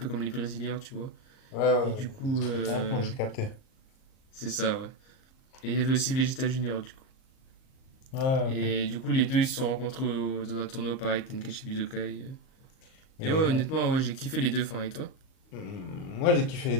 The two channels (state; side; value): late; right; 38 ms